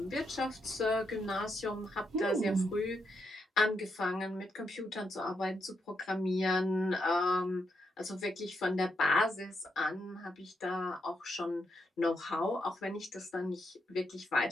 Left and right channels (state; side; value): normal; both; correlation 0.81